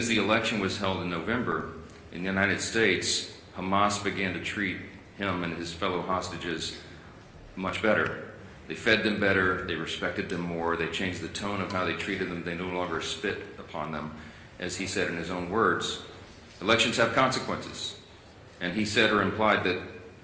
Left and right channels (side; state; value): both; identical; correlation 1.00